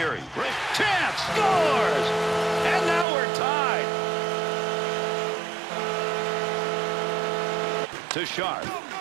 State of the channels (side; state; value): left; drops out; at 3.1 s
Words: Chance scores! And now we're tied. To Sharp.